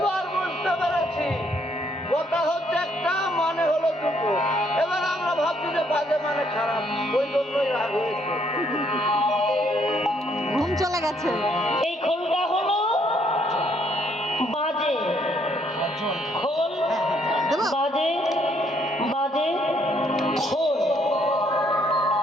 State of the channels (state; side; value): normal; both; correlation 0.69